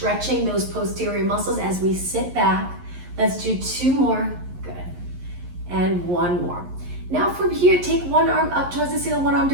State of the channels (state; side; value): late; left; 11 ms